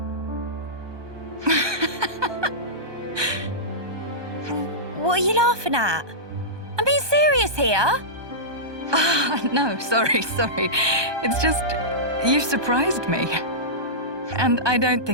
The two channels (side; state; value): left; late; 1.2 ms